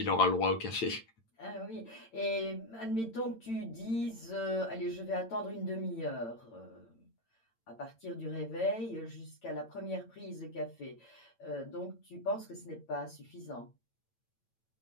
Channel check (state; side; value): late; right; 8.9 ms